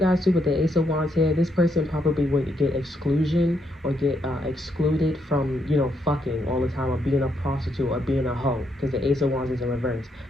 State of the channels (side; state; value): both; normal; correlation 0.77